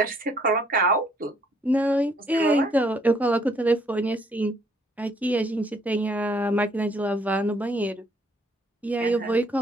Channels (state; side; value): normal; both; correlation 0.66